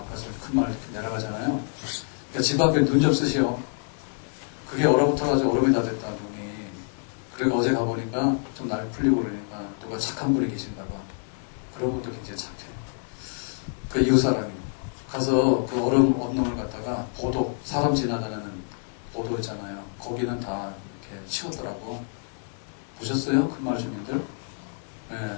가서 큰 마을 내려가잖아요. 그러니까 집 앞에 눈 좀 쓰시오. 그게 얼어붙어가지고 얼음이 다 됐다 눈이. 그러니까 어제 가보니까 좀 날 풀리고 그러니까 누가 착한 분이 계신가 봐. 그런 분도 굉장히 착해. 그 이웃 사람이 가서 그 얼음 언놈을 갖다가 보도 사람 지나다니는 보도 있잖아요. 거기는 다 이렇게 치웠더라고. 보셨어요? 큰마을 주민들? 예.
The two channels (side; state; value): right; silent; 60 dB below the other